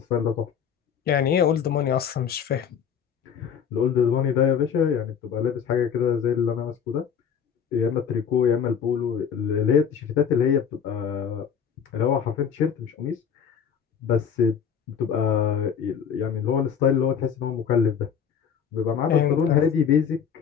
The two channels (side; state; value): right; quieter; 7.6 dB